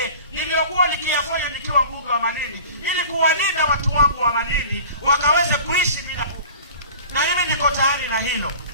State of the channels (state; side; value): inverted; both; correlation -0.41